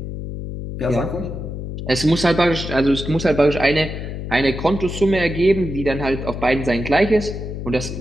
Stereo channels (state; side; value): noise; left; hum, 7 dB below the sound